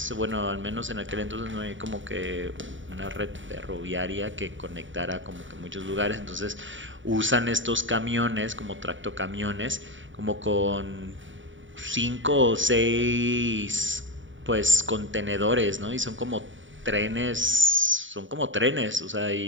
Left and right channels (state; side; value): late; left; 0.56 ms